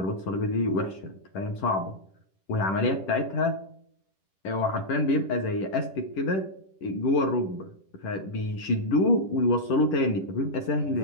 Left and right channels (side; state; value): right; late; 10 ms